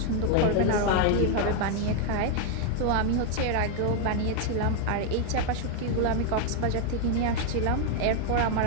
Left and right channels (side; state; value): both; different; correlation 0.00